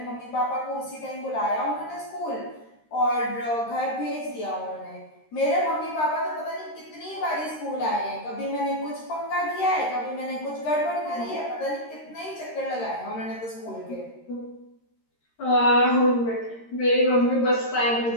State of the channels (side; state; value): right; late; 13 ms